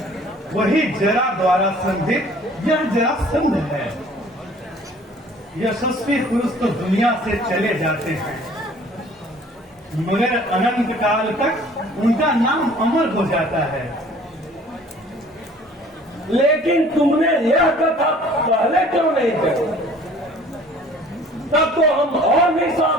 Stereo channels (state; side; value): normal; both; correlation 0.52